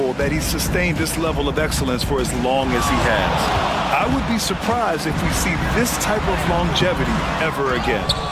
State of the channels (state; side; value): identical; both; correlation 1.00